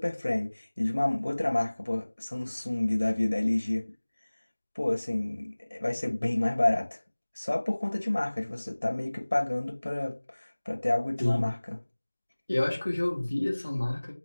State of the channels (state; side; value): inverted; both; correlation -1.00